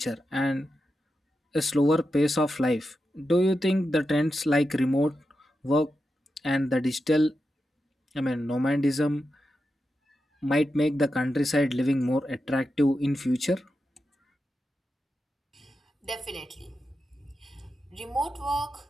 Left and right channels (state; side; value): normal; both; correlation 0.89